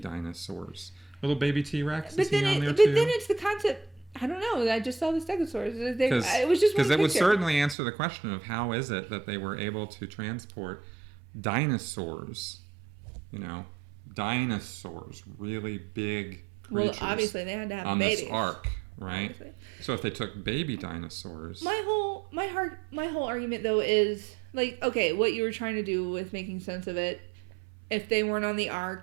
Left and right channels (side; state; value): left; drops out; at 7.8 s